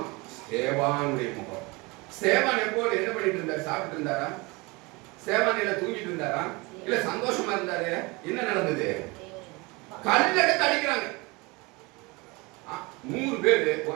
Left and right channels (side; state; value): left; quieter; 25.6 dB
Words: ஸ்தேவானுடைய முகம். ஸ்தேவான் எப்போது என்ன பண்ணிட்டு இருந்தார்? சாப்பிட்டு இருந்தாரா? ஸ்தேவான் இல்ல தூங்கிட்டு இருந்தாரா? இல்ல சந்தோஷமா இருந்தாரு? என்ன நடந்தது? கல்லெடுத்து அடிக்கிறாங்க. 100 பேர்